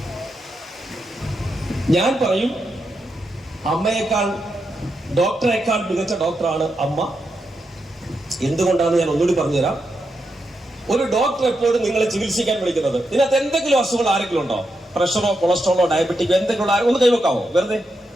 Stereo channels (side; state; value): both; normal; correlation 0.85